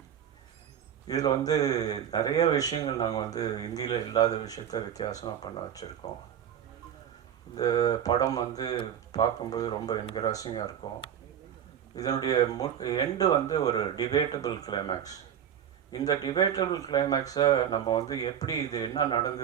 இதில் வந்து நிறைய விஷயங்கள் நாங்கள் வந்து இந்தியில் இல்லாத விஷயத்த வித்தியாசமாக பண்ண வச்சுருக்கோம். இந்த படம் வந்து பார்க்கும்போது ரொம்ப என்கரேஜிங்காக இருக்கும். இதனுடைய எண்டு வந்து ஒரு டிபேட்டபிள் கிளைமேக்ஸ். இந்த டிபேட்டபிள் கிளைமேக்ஸை நம்ம வந்து எப்படி இது என்ன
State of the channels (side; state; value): left; quieter; 9.1 dB